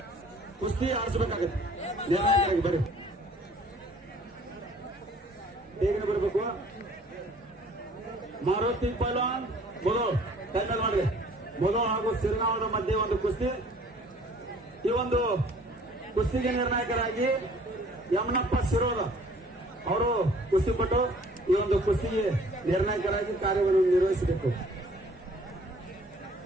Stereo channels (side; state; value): both; normal; correlation 0.54